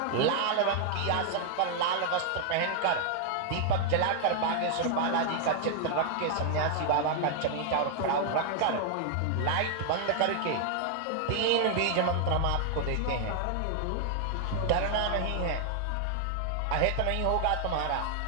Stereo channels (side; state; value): both; different; correlation 0.00